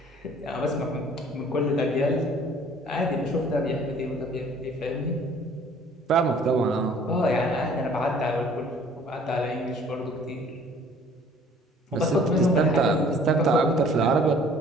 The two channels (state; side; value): normal; both; correlation 0.54